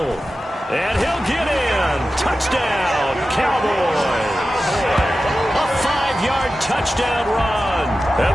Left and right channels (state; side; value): normal; both; correlation 0.93